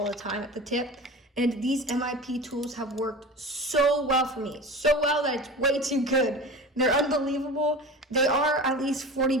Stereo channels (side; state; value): both; normal; correlation 0.33